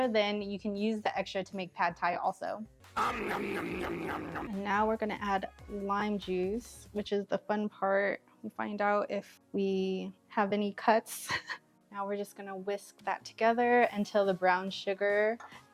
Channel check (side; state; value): both; identical; correlation 1.00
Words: then you can use the extra to make pad thai also. And now we're gonna add lime juice, which is the fun part. We find out if we have any cuts. Now we're just gonna whisk that together until the brown sugar